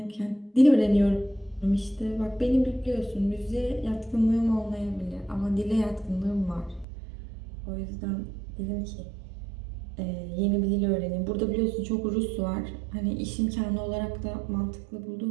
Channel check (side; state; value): left; drops out; at 6.9 s